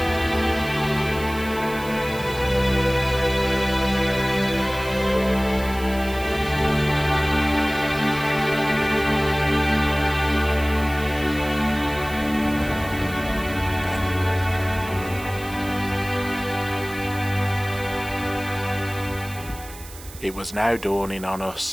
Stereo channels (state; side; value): noise; right; hiss, 17 dB below the sound